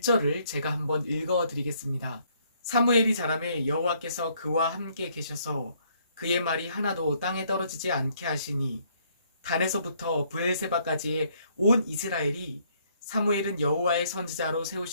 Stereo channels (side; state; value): both; inverted; correlation -0.67